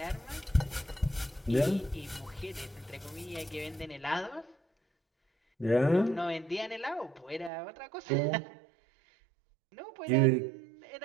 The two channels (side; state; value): left; drops out; at 7.5 s